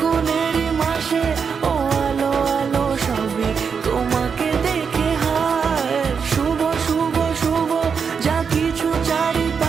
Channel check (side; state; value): left; quieter; 6.1 dB